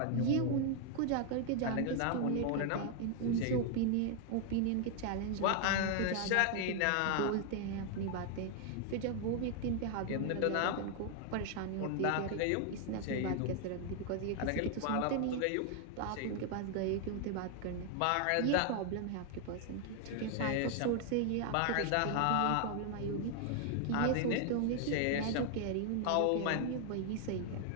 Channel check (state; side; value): different; both; correlation 0.00